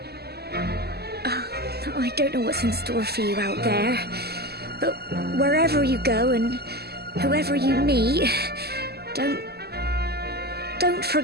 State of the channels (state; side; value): late; left; 0.46 ms